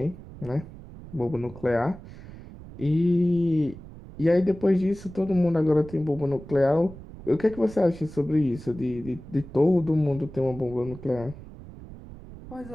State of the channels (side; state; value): right; noise; rumble, 16 dB below the sound